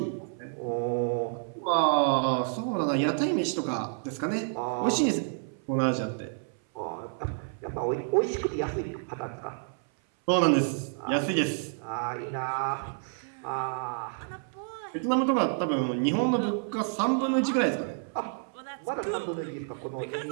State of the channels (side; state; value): left; silent; 58 dB below the other